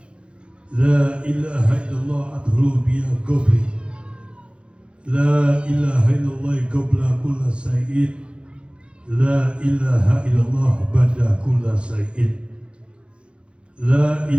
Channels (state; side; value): late; left; 0.058 ms